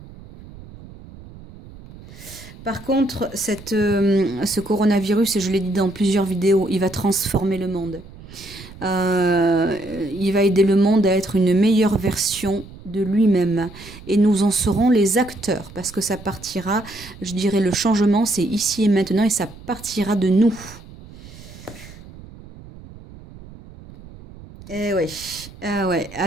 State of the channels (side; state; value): right; noise; rumble, 18 dB below the sound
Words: Par contre, ce coronavirus, et je l'ai dit dans plusieurs vidéos, il va transformer le monde. Il va aider le monde à être une meilleure version de lui-même. Et nous en serons les acteurs, parce que ça partira, je dirais, le changement, c'est ici et maintenant, et ça partira de nous. Eh oui, ah ouais.